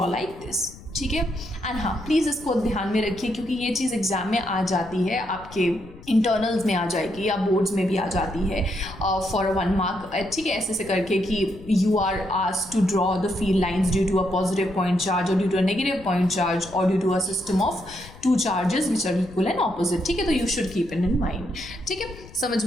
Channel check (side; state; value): left; noise; rumble, 19 dB below the sound